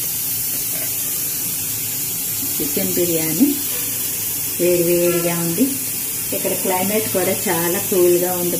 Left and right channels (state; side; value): noise; left; hum, 27 dB below the sound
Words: చికెన్ బిర్యానీ వేడి వేడిగా ఉంది. ఇక్కడ క్లైమేట్ కూడా చాలా కూల్గా ఉంది.